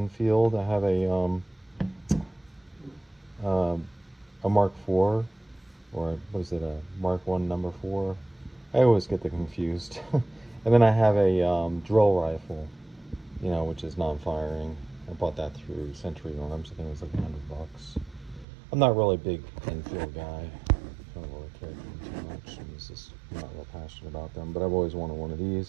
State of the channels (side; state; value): left; drops out; at 18.4 s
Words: I have a Mark IV, or what is it, a Mark 1 number 4? I always get them confused. And then I have a drill rifle, you know, which is non-firing. I bought that through Century Arms. I think it was like $100. I'm not really a big Enfield guy. I don't really care for them too much. I'm not real passionate about them, but I've always wanted one of